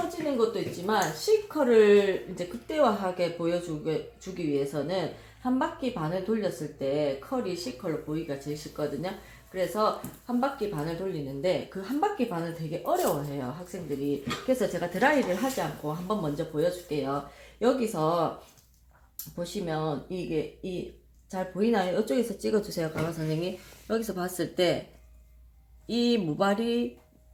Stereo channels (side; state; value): both; identical; correlation 1.00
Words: 것도 있지만 C컬을 이제 극대화하게 보여주기 위해서는 한 바퀴 반을 돌렸을 때 컬이 C컬로 보이기가 제일 쉽거든요. 그래서 한 바퀴 반을 돌리는데 그 한 바퀴 반을 되게 어려워해요, 학생들이. 그래서 제가 드라이를 하지 않고 한번 먼저 보여줄게요. 여기서 보시면 이게 잘 보이나요? 이쪽에서 찍어주세요, 강화 선생님. 여기서 봤을 때 이 모발이